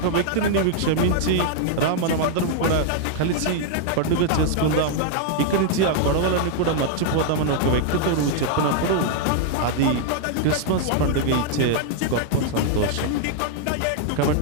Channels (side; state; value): both; different; correlation -0.01